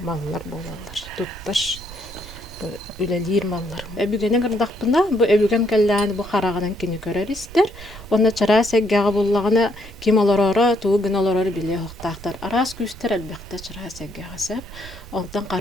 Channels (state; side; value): noise; right; rumble, 16 dB below the sound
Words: болалар. Тұттар үлелер маллар. Өбүгенен кырдакпына бу өбүгем келләне бу харагынан кини көрәристер. Онда чара сәггәгә буллагына ким аларара, туу гыналарар биле хоктактар. Арас күстер әлбәттә чара сәггәгә сәп. Ондан